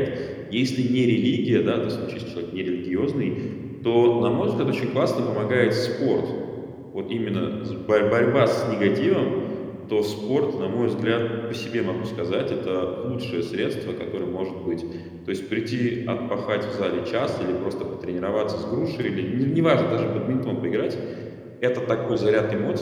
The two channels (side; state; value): both; identical; correlation 1.00